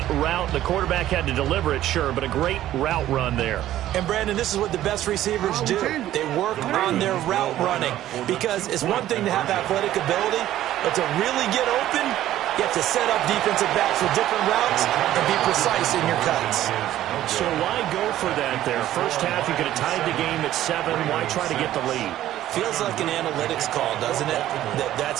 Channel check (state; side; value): quieter; left; 13.3 dB